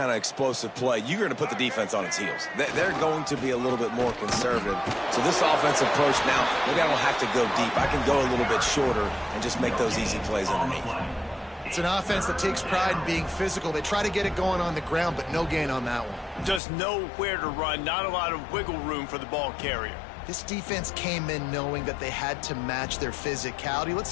of explosive play, you're going to put the defense on its heels. They're going to be a little bit more conservative. So this offensive approach now, maybe I don't have to go deep. I can go a little bit shorter and just make those easy plays underneath. It's an offense that takes pride in being physical. They try to get it going on the ground, but no gain on that one. Just nowhere to run, not a lot of wiggle room for the ball carrier. This defense came in knowing that they had to match their physicality. Let's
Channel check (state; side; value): drops out; right; at 16.6 s